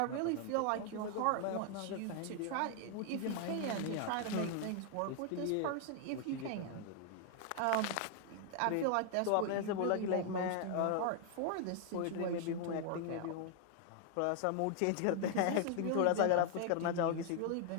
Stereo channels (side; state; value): both; different; correlation 0.00